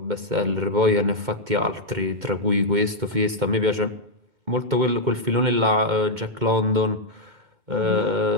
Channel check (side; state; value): left; late; 2.1 ms